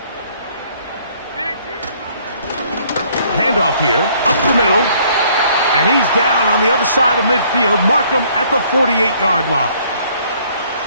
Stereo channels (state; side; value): inverted; both; correlation -0.62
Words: Handoff here, up the middle. And he's down on the other side of midfield. Mark him at the 48-yard line.